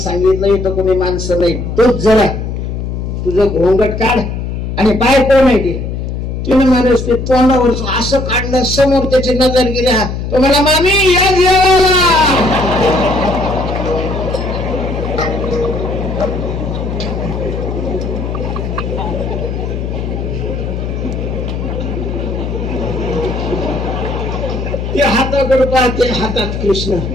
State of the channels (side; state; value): left; noise; hum, 4 dB below the sound